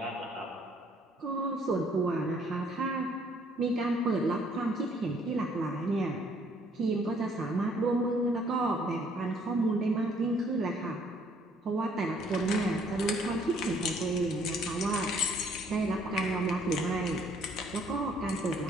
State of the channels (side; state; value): both; normal; correlation 0.63